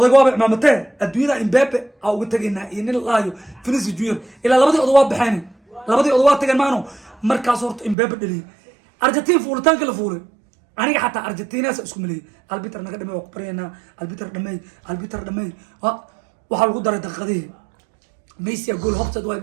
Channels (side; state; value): left; drops out; at 8.0 s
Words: waa imaamtay adduunyada Mbappe aa uga tageynaa in laayo Vinicius Junior ila labadii odag waa baxeen labadii odag waa tageen maano markaas horta Mbappe dhaliyay Argentine fuulitaanka la fuulay aniga xataa Argentina isku milay albiter naga dhamay ku barayna albiter dhamay waxa lagu daray daqiiqadii Messi gool hobtad way